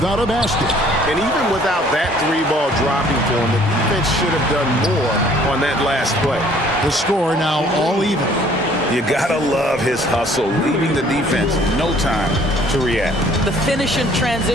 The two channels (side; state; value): both; normal; correlation 0.57